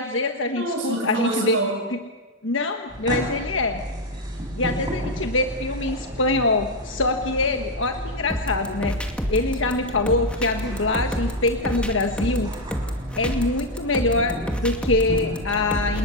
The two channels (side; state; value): both; normal; correlation 0.04